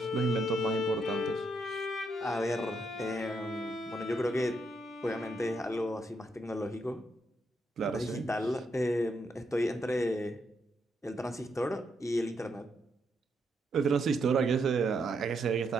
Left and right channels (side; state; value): both; normal; correlation 0.78